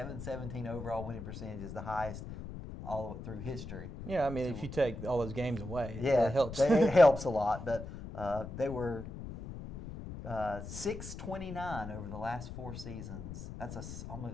overall winning percentage is the highest all through history. Yeah, I mean, if you take all those games away, it helps. It helps a lot. But they were 629 over the last 4 seasons. That's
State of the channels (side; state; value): left; noise; rumble, 9 dB below the sound